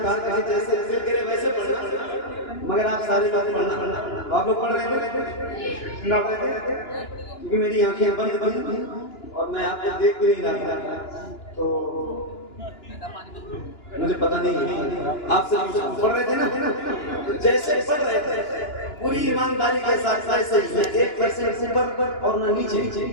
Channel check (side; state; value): right; late; 2.9 ms